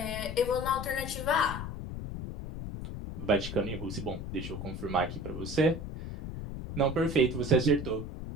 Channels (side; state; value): left; noise; rumble, 7 dB below the sound